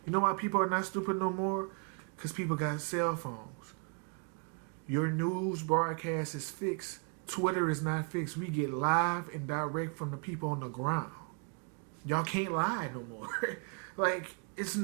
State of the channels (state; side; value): quieter; left; 39.6 dB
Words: You know why people are not stupid no more? Because people got cell phones. Your news broadcast is fixed. Twitter is not fixed. We get live and direct from the people on the ground. Y'all can't lie no more. It's